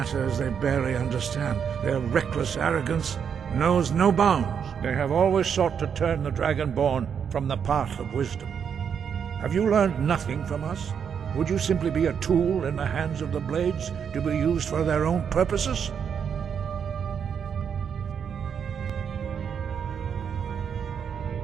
they barely understand. Their reckless arrogance knows no bounds. They have always sought to turn the Dragonborn from the path of wisdom. Have you learned nothing from us? Would you simply be a tool in the hands of the Blades to be used for their own purposes?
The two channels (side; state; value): left; quieter; 7.4 dB